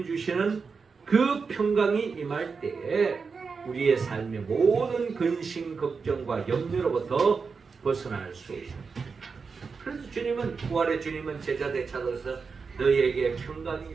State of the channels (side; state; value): left; quieter; 5.1 dB